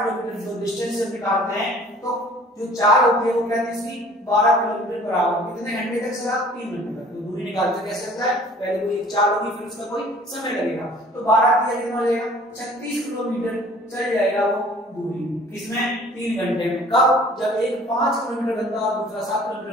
जो डिस्टेंस हम निकालते हैं तो जो चाल होती है वो क्या थी इसकी, 12 किलोमीटर बराबर कितने घंटे तक चला, 3 घंटे तक। तो दूरी निकालते कैसे होता है, पहले कोई एक चाल होगी फिर उसका कोई समय लगेगा, तो 12 किया कितना हो जाएगा, 36 किलोमीटर चल जाएगा वो दूरी, किसमें, 3 घंटे में। कब, जब एक 5 किलोमीटर घंटा और दूसरा 7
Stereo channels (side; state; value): both; normal; correlation 0.51